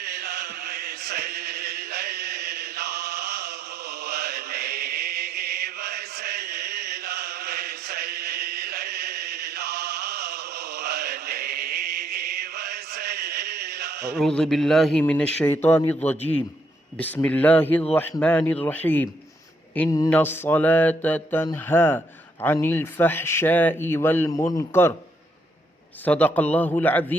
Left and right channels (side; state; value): both; normal; correlation 0.74